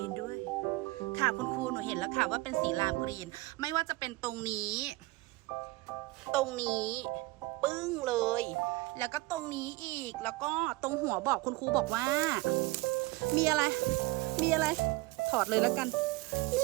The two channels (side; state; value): left; quieter; 21.8 dB